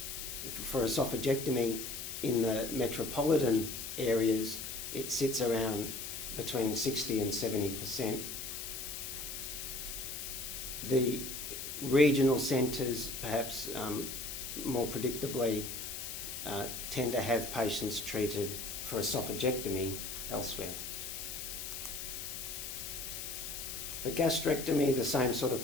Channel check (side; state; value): left; noise; hiss, 6 dB below the sound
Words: esophagectomy in the metropolitan areas, it sits around between 60 and 70%. The regional centres, perhaps more predictably, tend to have patients treated for esophagectomy elsewhere. For gastrectomy, the same sort of